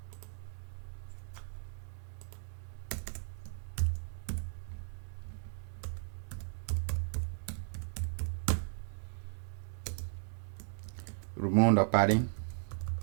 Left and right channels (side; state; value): left; silent; digital silence